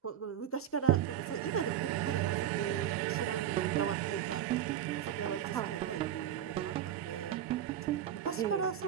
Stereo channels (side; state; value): left; quieter; 10.7 dB